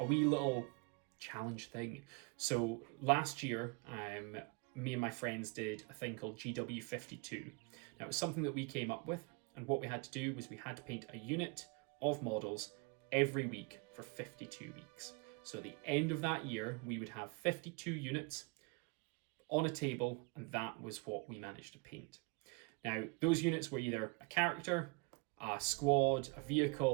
wee little challenge thing. So last year, me and my friends did a thing called GW52. Now, it was something that we came up with, and what we had to do was we had to paint a unit of models every week for 52 weeks. So at the end of that year, we would have 52 units on a table, and that was what we managed to paint. Now, those units were either a character, a squad, a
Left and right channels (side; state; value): left; quieter; 29.8 dB